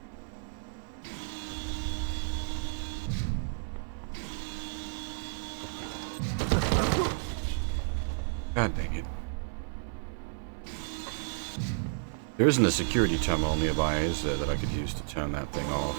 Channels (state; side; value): silent; left; 57 dB below the other